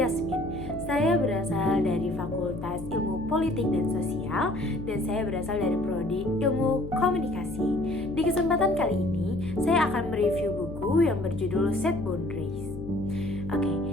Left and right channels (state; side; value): noise; left; hum, 10 dB below the sound